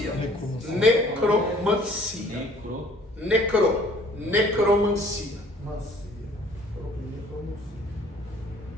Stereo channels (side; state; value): both; normal; correlation 0.55